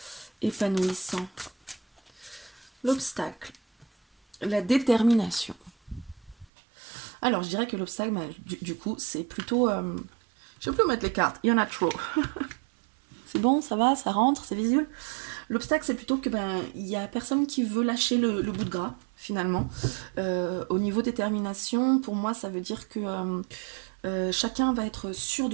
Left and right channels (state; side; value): drops out; left; at 6.5 s